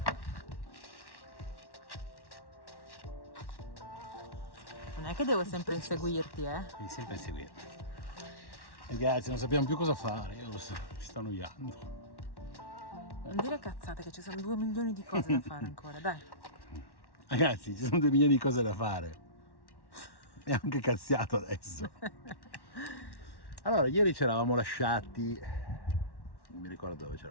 Non è che devo sempre inseguirti, Devi sempre inseguirmi. Ragazzi, non sappiamo più cosa fare, io mi sto annoiando. Non dire cazzate, che ci sono 2 milioni di cose da fare ancora, dai. Ragazzi, ci sono 2 milioni di cose da fare. E anche cazziato adesso. Allora, ieri ci eravamo lasciati. Non mi ricordo dove ci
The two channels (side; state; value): right; late; 1.1 ms